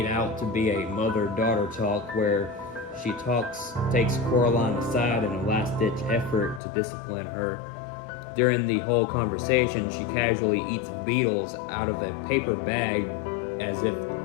out to be a mother-daughter talk where she takes Coraline aside in a last-ditch effort to discipline her. During the whole conversation, she casually eats beetles out of a paper bag as if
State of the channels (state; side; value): drops out; right; at 6.6 s